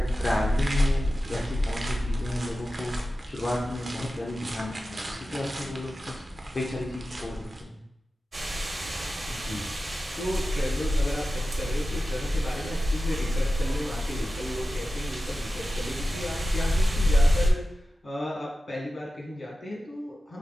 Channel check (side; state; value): both; normal; correlation 0.94